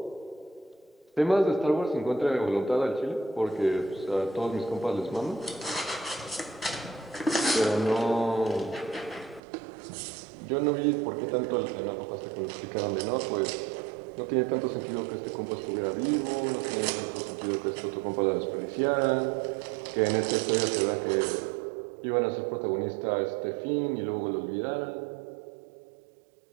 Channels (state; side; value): drops out; left; at 9.4 s